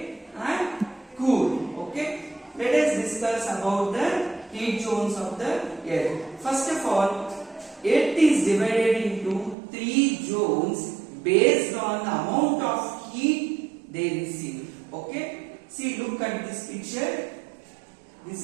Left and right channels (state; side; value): drops out; left; at 9.6 s